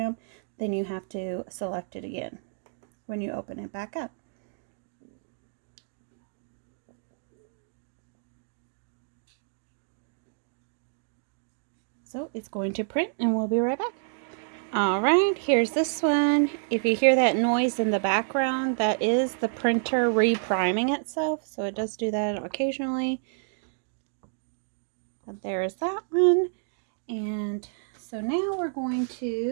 then you have to select it again when you open it back up. So it's going to print, and we'll be right back. Alright, here's this one. If you hear that noise in the background, that is the printer repriming itself, so it does do that occasionally. But there's that one. And so now we're going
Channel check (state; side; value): silent; left; digital silence